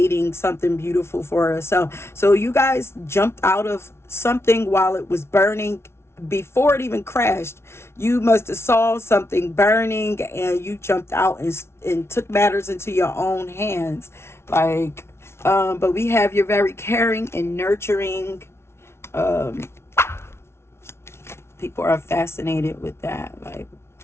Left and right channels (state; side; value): late; right; 0.12 ms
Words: something beautiful for herself. So you guys jumped out of something while it was burning. Before it even crashed, you must have saw something burning and you jumped out and took matters into your own hands. Like, but we have you're very caring and nurturing. People are fascinated with that. Like,